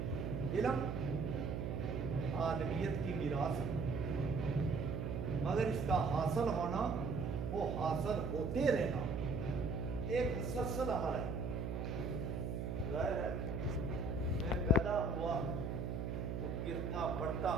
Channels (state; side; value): noise; right; hum, 2 dB below the sound